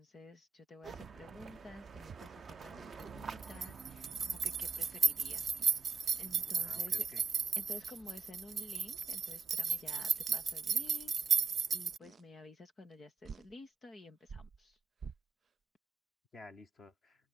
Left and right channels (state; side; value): quieter; left; 5.2 dB